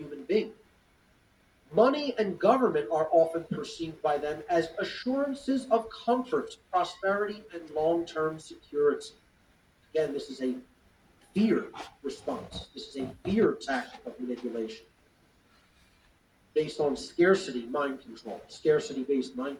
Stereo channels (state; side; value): identical; both; correlation 1.00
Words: being. Money and government are often perceived by them as assurances of comfort, prosperity, and long-term security. Again, this is a fear response. This is a fear tactic of manipulation based on scarcity mind control, scarcity-based mind